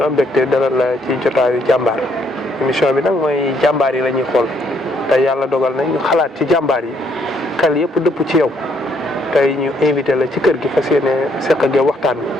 am mbégte dalal la ci jotaayu jàmbaar émission bi nag mooy jàmbaar yi la ñuy xool tey yàlla dogal na ñu xalaat ci jàmbaar yi xel yëpp dëpp ci yow tey ñu invité la ci kër gi fas yéene seq ak yow waxtaan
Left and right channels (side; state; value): both; normal; correlation 0.70